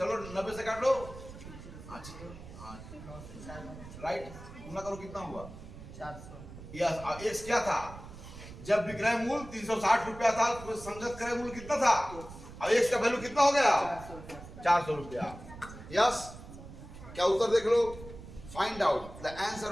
90 से काट लो। अच्छा राइट, गुना करो कितना हुआ 400। यस, एक्स क्या था जब विक्रय मूल 360 रुपया था, तो संगत क्रय मूल कितना था। अब एक्स का वैल्यू कितना हो गया 400 रुपया। यस, क्या उत्तर देख लो। Find out the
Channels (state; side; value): noise; right; rumble, 14 dB below the sound